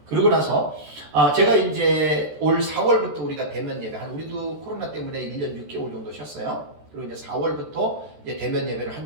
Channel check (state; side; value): late; left; 14 ms